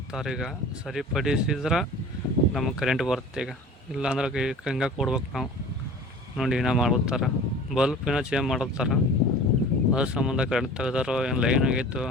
ಈಗ ಸರಿಪಡಿಸಿದ್ರೆ ನಮಗೆ ಕರೆಂಟ್ ಬರುತ್ತೆ. ಈಗ ಇಲ್ಲಾಂದ್ರೆ ಹಂಗೆ ಕೊಡ್ಬೇಕು ನಾವು. ನೋಡಿ ಏನೋ ಮಾಡ್ತಾರೆ, ಬಲ್ಪ್ ಏನೋ ಚೇಂಜ್ ಮಾಡತ್ತಾರ. ಅದ್ರ ಸಂಬಂಧ ಕರೆಂಟ್ ತೆಗ್ದಾರೋ ಏನು ಲೈನ್ ಆಗೈತೋ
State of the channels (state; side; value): normal; both; correlation 0.41